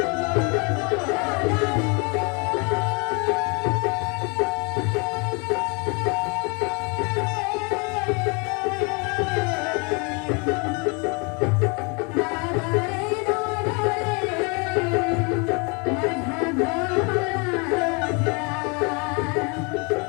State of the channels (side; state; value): right; quieter; 32.2 dB